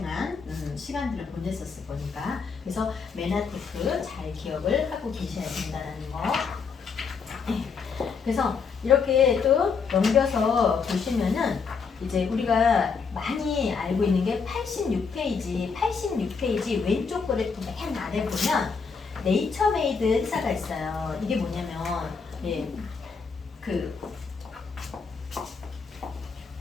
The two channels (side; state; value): right; quieter; 5.5 dB